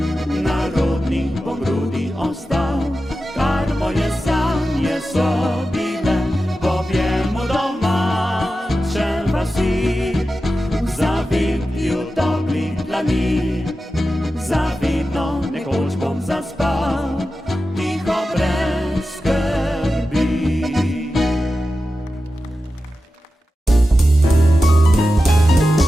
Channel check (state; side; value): normal; both; correlation 0.92